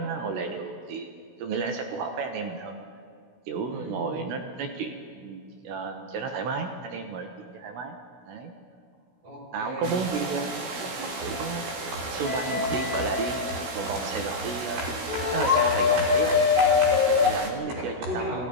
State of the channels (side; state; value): left; late; 16 ms